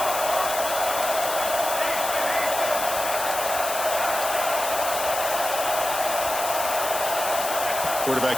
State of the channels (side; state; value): left; noise; hiss, 5 dB below the sound